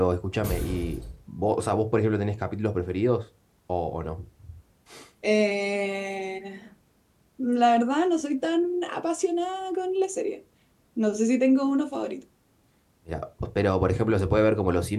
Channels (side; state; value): both; identical; correlation 1.00